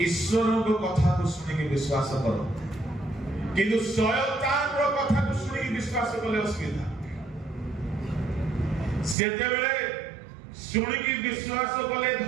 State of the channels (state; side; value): drops out; left; at 9.2 s